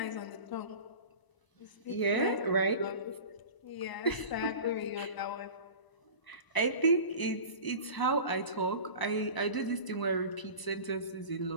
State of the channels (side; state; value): right; late; 1.0 ms